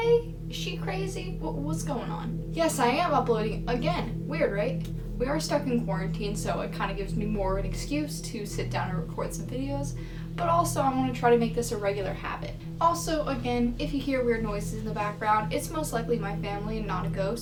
Is she crazy? What's going on? Yes, I am uploading again. Weird, right? We are stuck in quarantine, so it kind of gives me more of an excuse to sit down and record some videos, but also I want to try to make this a regular habit. Also, again, if you hear weird noises in the background, it's most likely my family and not a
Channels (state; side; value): identical; both; correlation 1.00